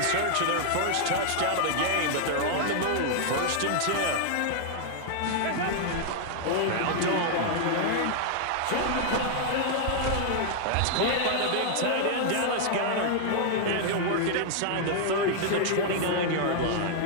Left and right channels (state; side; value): different; both; correlation -0.01